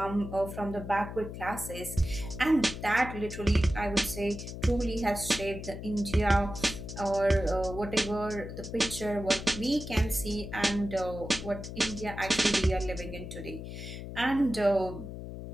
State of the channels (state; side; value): noise; left; hum, 9 dB below the sound